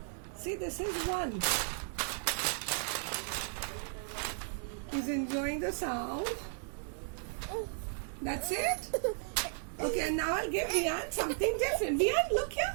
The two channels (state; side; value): silent; left; 55 dB below the other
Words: See, this is 1. He's enjoying the sound. That's it? Okay, and now I'll give Vian something different. Vian, look